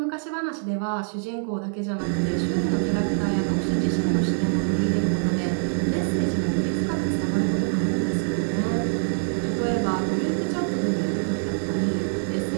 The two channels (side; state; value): left; silent; 62 dB below the other